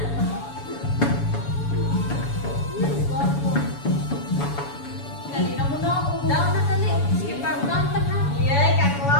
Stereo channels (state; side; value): late; right; 7.0 ms